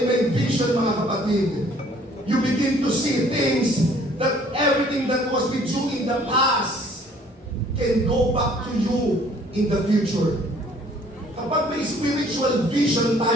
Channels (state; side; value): normal; both; correlation 0.57